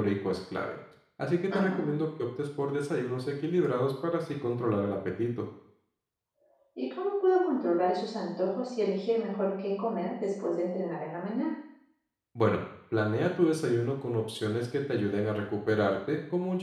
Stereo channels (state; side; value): identical; both; correlation 1.00